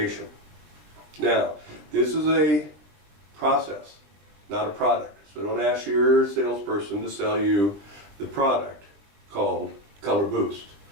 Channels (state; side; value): late; left; 20 ms